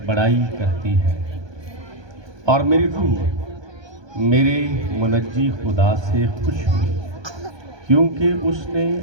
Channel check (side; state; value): left; late; 1.2 ms